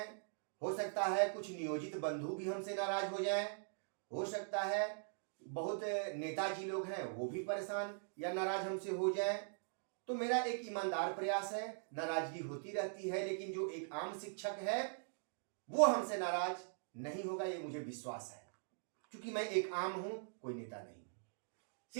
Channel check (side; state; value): left; silent; digital silence